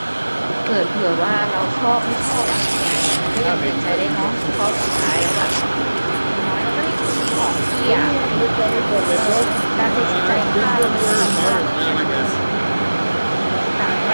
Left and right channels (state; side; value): inverted; both; correlation -1.00